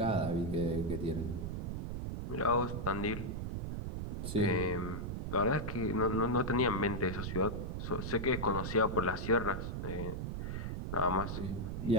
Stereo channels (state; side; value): noise; right; rumble, 3 dB below the sound